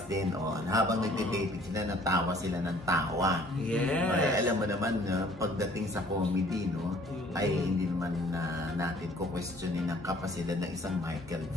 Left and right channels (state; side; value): normal; both; correlation 0.56